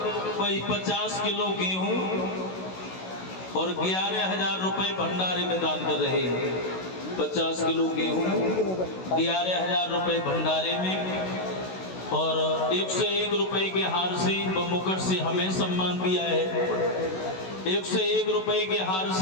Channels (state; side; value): late; right; 16 ms